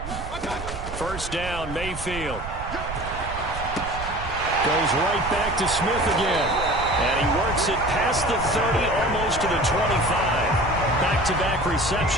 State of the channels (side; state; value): right; noise; rumble, 10 dB below the sound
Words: First down, Mayfield. Goes right back to Smith again. And he works it past the 30, almost to the 25. Back-to-back